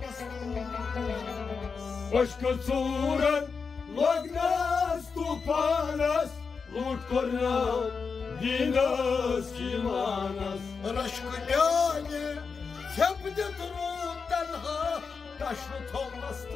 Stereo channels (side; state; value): right; quieter; 5.2 dB